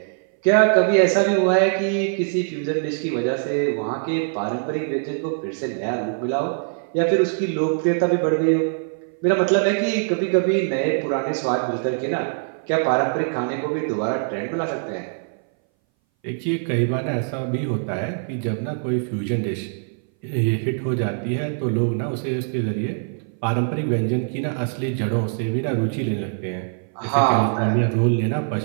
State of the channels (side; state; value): left; silent; 60 dB below the other